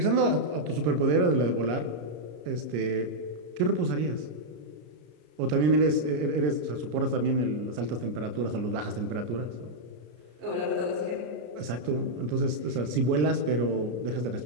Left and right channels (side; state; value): left; late; 33 ms